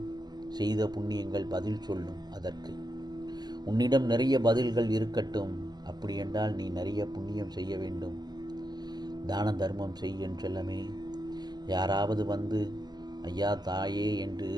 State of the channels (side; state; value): left; late; 0.20 ms